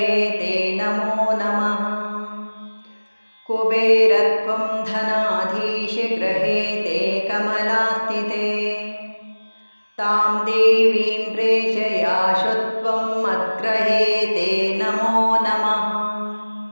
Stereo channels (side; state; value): both; inverted; correlation -1.00